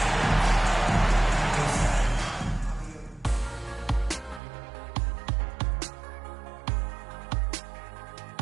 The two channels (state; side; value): drops out; left; at 4.4 s